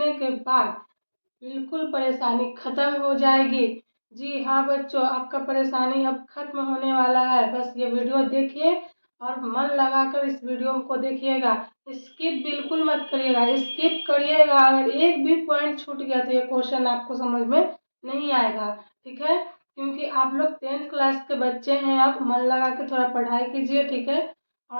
के बाद बिल्कुल परेशानी खत्म हो जाएगी। जी हाँ बच्चों, आपका परेशानी अब खत्म होने वाला है। बस ये वीडियो देखिए और मन लगाकर इस वीडियो को देखिएगा। स्किप बिल्कुल मत करिएगा। स्किप करिएगा अगर एक भी पॉइंट छूट गया तो ये क्वेश्चन आपको समझ में नहीं आएगा। ठीक है, क्योंकि आप लोग 10th क्लास के बच्चे हैं। आप मन लगा के थोड़ा पढ़ाई कीजिए, ठीक है,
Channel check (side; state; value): both; inverted; correlation -1.00